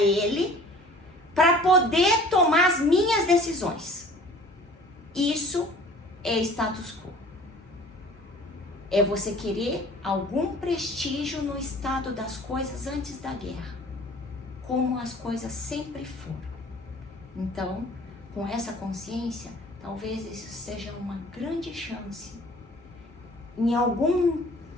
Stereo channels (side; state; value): both; normal; correlation 0.48